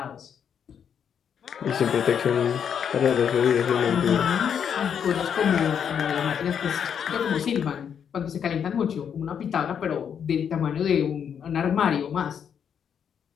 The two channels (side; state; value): right; quieter; 7.9 dB